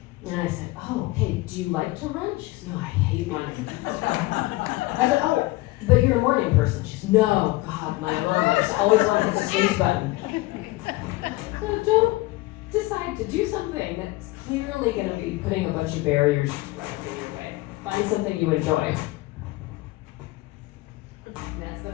And I said, oh, okay, do you like to run? She said, no, I hate running. I said, oh, but you're a morning person. She said, no, God, my alarm, I just always want to hit the snooze button. So don't decide to do something that's clearly going to be putting a bunch of barriers right up in your way. Find something you enjoy. And that's the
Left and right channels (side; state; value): right; quieter; 20.1 dB